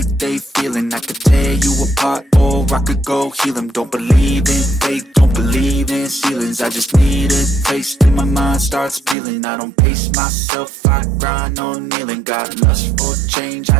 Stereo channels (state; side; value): drops out; left; at 9.2 s